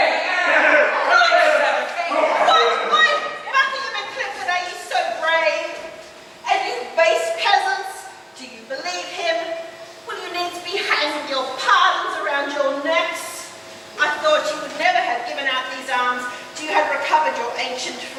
Why, Buckingham and Clifford, are you so brave? And you base peasants, do you believe him? Will you needs be hanging your pardons around your necks? I thought you would never have given out these arms till you had recovered your ancient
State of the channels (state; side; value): identical; both; correlation 1.00